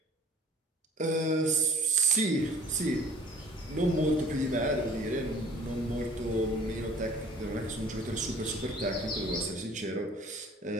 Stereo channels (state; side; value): normal; both; correlation 0.51